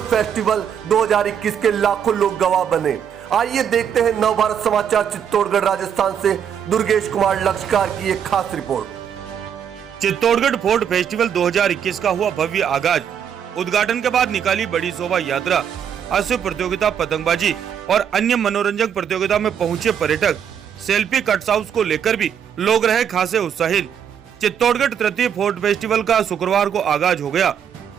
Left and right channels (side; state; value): left; quieter; 8.4 dB